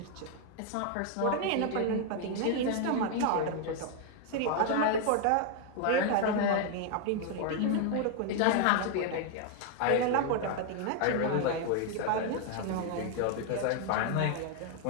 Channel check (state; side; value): different; both; correlation 0.00